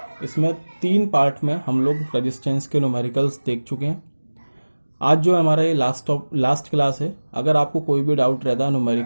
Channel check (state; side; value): inverted; both; correlation -1.00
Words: इसमें 3 पार्ट में हम लोग रेजिस्टेंस के न्यूमेरिकल्स देख चुके हैं। आज जो हमारा ये लास्ट क्लास है, अगर आपको कोई भी डाउट रहता है